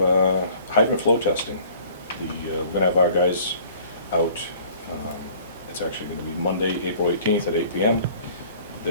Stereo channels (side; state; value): both; inverted; correlation -0.53